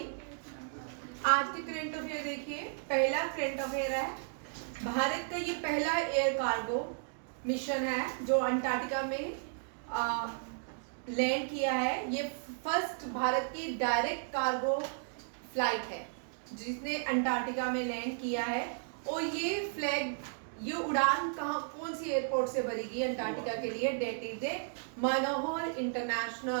आज के करंट अफेयर देखिए। पहला करंट अफेयर है, भारत का ये पहला एयर कार्गो मिशन है जो अंटार्कटिका में लैंड किया है। ये फर्स्ट भारत की डायरेक्ट कार्गो फ्लाइट है जिसने अंटार्कटिका में लैंड किया है। और ये उड़ान कौन सी एयरपोर्ट से भरेगी अंटार्कटिका के लिए? That is a Manohar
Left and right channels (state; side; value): silent; left; digital silence